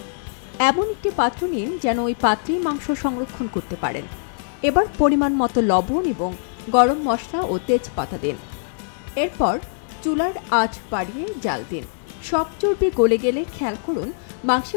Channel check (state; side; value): silent; right; digital silence